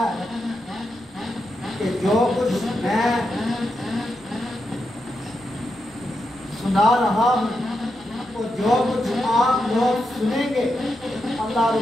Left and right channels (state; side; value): noise; right; rumble, 28 dB below the sound